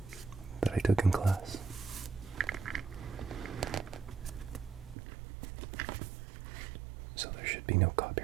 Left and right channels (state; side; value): drops out; left; at 5.0 s